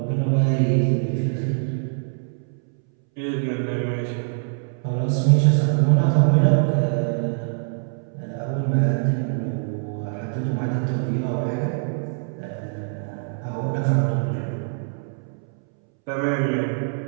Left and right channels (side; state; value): left; silent; 63 dB below the other